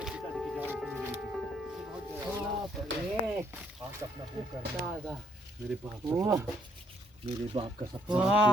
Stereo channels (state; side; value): normal; both; correlation 0.70